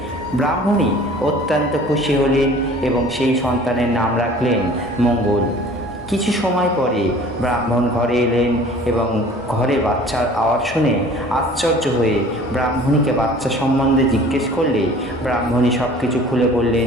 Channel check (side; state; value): both; normal; correlation 0.48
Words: ব্রাহ্মণী অত্যন্ত খুশি হলেন এবং সেই সন্তানের নাম রাখলেন মঙ্গল। কিছু সময় পরে ব্রাহ্মণ ঘরে এলেন এবং ঘরে বাচ্চার আওয়াজ শুনে আশ্চর্য হয়ে ব্রাহ্মণীকে বাচ্চা সম্বন্ধে জিজ্ঞেস করলে ব্রাহ্মণী সব কিছু খুলে